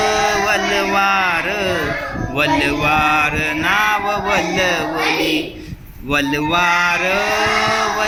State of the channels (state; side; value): identical; both; correlation 1.00